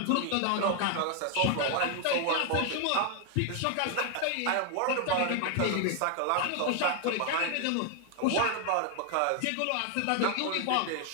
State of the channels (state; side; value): different; both; correlation 0.00